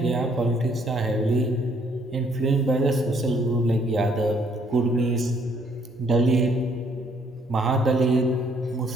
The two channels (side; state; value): both; normal; correlation 0.66